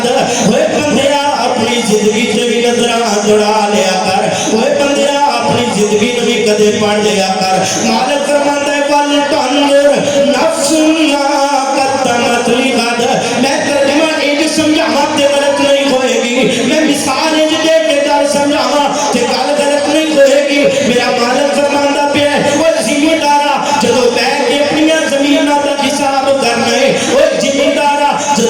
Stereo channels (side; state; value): both; identical; correlation 1.00